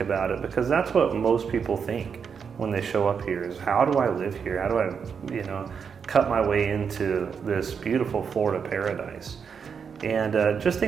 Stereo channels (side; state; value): left; quieter; 6.5 dB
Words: about it, because that's what most people think when they show up here is, how do I live here? How do I, cut my way into this beautiful Florida paradise? And just